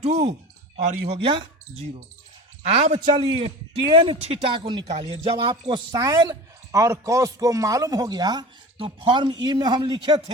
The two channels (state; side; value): normal; both; correlation 0.35